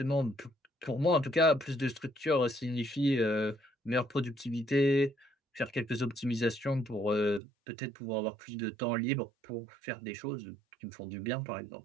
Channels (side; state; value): left; drops out; at 7.4 s